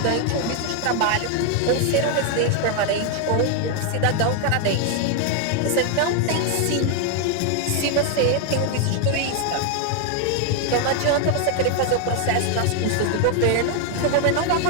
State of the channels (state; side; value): different; both; correlation 0.00